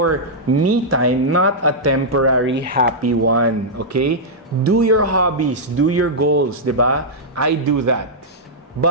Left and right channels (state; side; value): normal; both; correlation -0.08